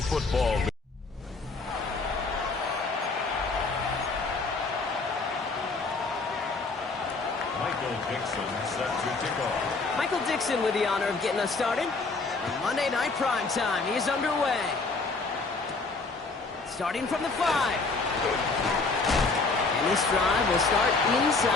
Football League. Michael Dixon set to kick off. Michael Dixon with the honor of getting us started. Monday Night Prime Time is underway. Starting from the 5. And this drive will start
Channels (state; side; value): quieter; right; 3.9 dB